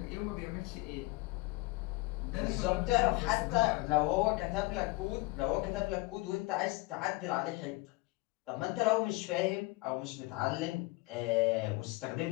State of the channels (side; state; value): right; quieter; 22.5 dB